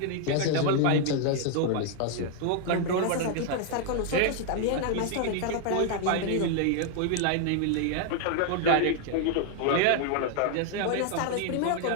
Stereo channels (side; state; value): both; different; correlation 0.00